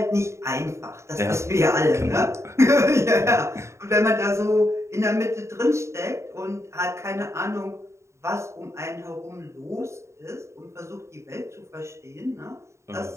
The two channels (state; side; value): late; left; 0.14 ms